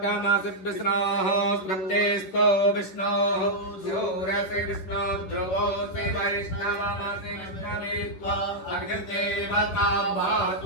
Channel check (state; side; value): late; right; 10 ms